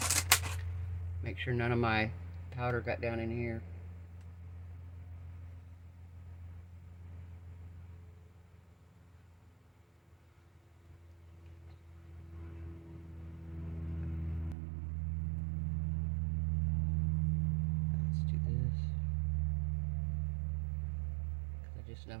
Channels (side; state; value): left; drops out; at 14.6 s